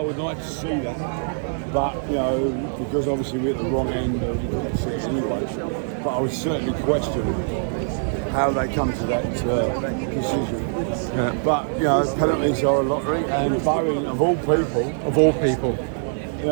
like to see that. But, you know, because obviously we're at the wrong end, we couldn't see it anyway. But I would certainly question how they come to that decision. Yeah. But, you know, penalties are a lottery, and Bowen, of all people, you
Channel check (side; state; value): left; silent; digital silence